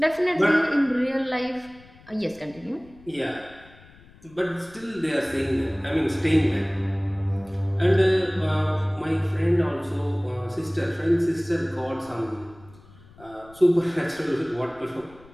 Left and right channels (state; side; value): noise; left; rumble, 24 dB below the sound